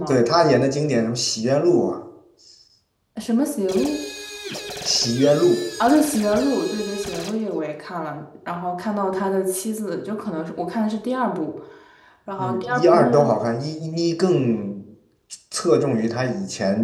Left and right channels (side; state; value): both; identical; correlation 1.00